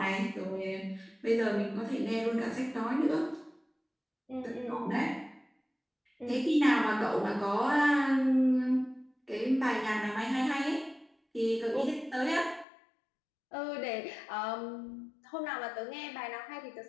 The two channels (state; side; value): drops out; right; at 12.7 s